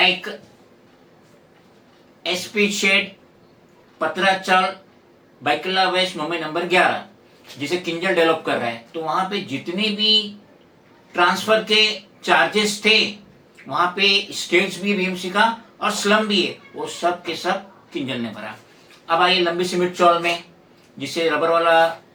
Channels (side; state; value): both; identical; correlation 1.00